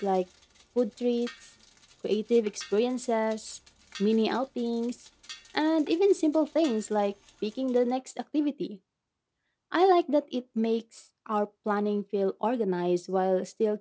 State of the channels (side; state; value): both; identical; correlation 1.00